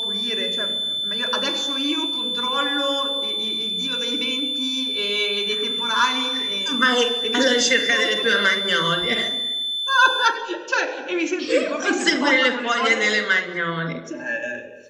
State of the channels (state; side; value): identical; both; correlation 1.00